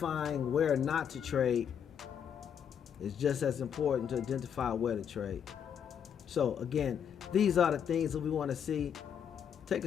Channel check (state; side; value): quieter; right; 8.2 dB